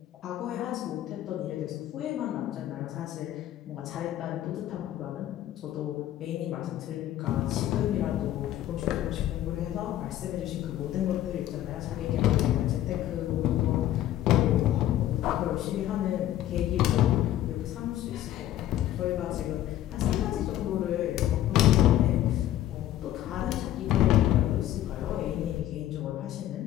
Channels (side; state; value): right; quieter; 12.9 dB